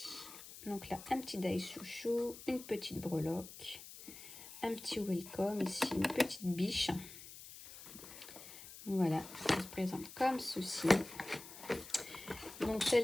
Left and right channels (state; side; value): noise; left; hiss, 14 dB below the sound